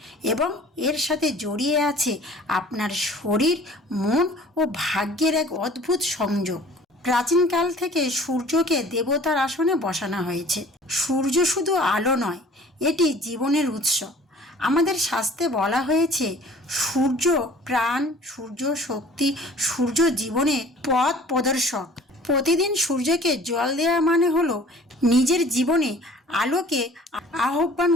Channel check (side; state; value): both; normal; correlation 0.49